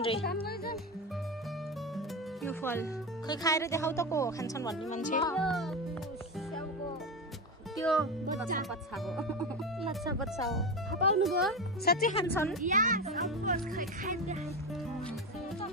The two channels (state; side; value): normal; both; correlation 0.19